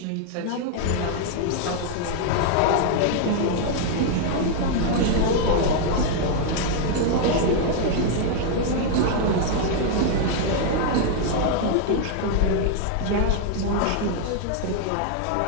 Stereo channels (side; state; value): both; different; correlation 0.00